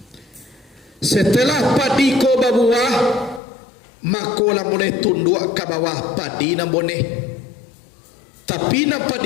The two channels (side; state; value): right; drops out; at 3.4 s